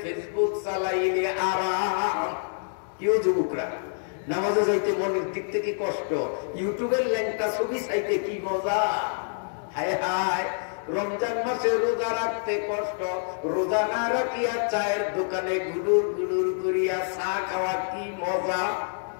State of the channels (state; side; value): silent; right; digital silence